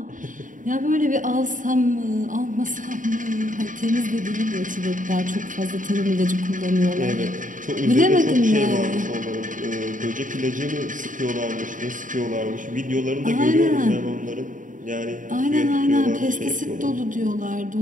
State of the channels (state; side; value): late; left; 0.38 ms